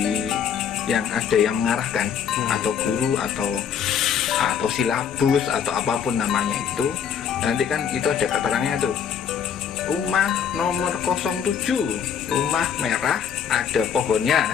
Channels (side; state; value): right; quieter; 8.0 dB